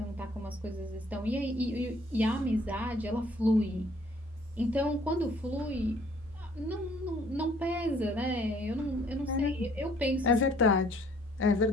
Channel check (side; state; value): both; normal; correlation 0.60